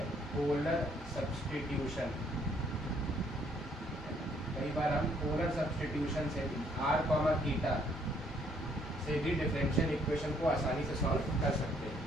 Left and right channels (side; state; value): both; normal; correlation 0.66